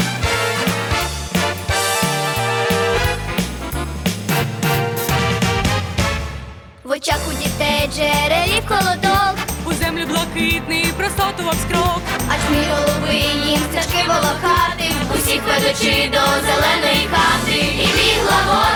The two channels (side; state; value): both; identical; correlation 1.00